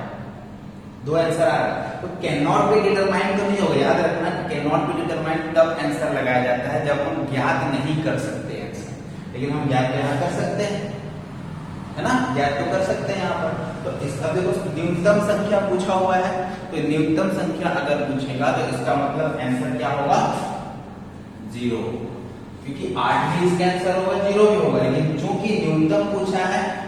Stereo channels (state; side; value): identical; both; correlation 1.00